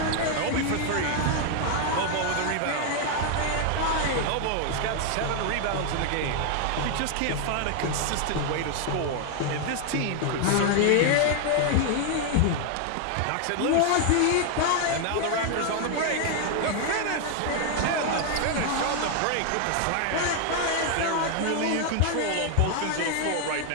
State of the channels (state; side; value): different; both; correlation 0.00